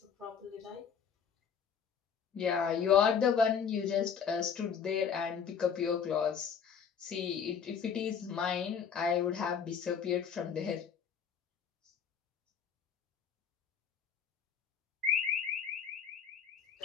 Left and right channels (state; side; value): quieter; right; 7.2 dB